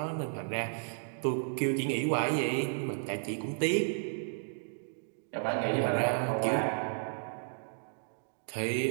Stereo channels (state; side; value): silent; left; digital silence